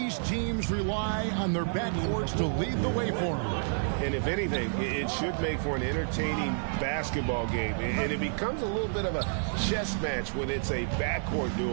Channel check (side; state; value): left; silent; 58 dB below the other